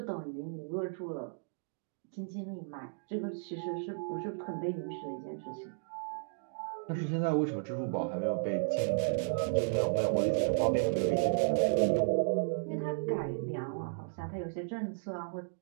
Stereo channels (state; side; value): silent; left; digital silence